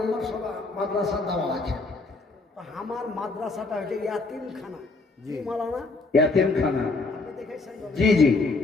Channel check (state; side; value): quieter; right; 3.6 dB